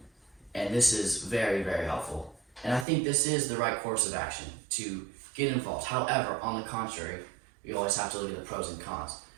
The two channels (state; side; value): drops out; left; at 2.9 s